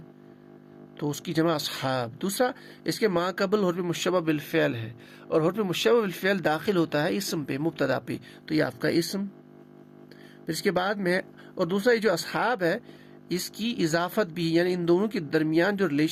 تو اس کی جمع اصحاب. دوسرا اس کے ما قبل حرف مشبہ بالفعل ہے، اور حرف مشبہ بالفعل داخل ہوتا ہے اسم پہ، مبتدا پہ، تو یہ آپ کا اسم. پھر اس کے بعد میں، اور دوسرا یہ جو اصحاب ہے اس کی اضافت بھی، یعنی ان دونوں کے درمیان جو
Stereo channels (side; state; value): both; identical; correlation 1.00